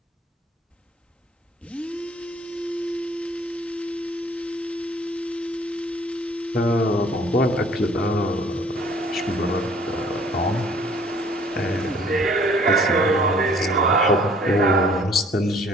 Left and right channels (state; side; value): normal; both; correlation 0.56